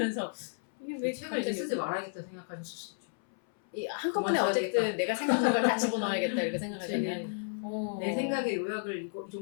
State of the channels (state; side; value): silent; right; 56 dB below the other